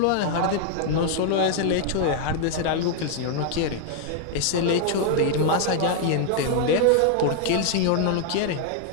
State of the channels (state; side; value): different; both; correlation 0.00